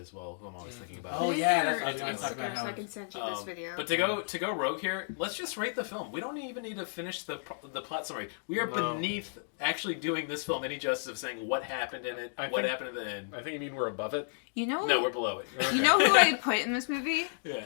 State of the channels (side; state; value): right; silent; digital silence